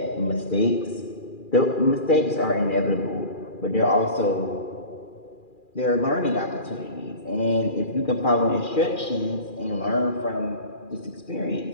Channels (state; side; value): late; right; 2.4 ms